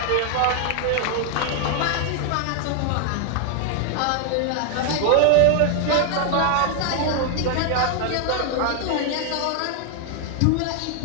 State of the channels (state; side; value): different; both; correlation 0.00